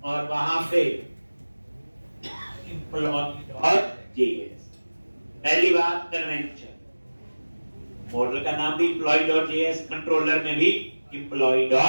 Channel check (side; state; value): both; inverted; correlation -1.00